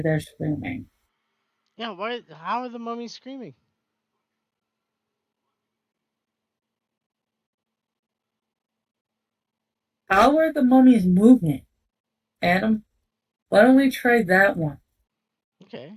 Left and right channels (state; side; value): identical; both; correlation 1.00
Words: screaming. Yeah, why? How are the mummies screaming? How are the mummies moving? Adam, why don't we try that one? Okay.